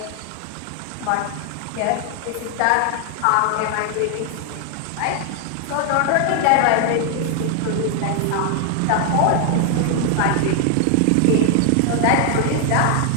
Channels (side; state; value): both; different; correlation 0.00